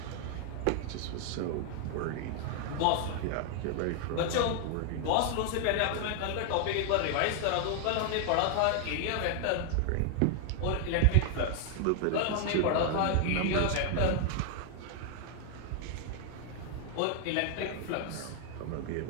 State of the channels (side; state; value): both; different; correlation 0.00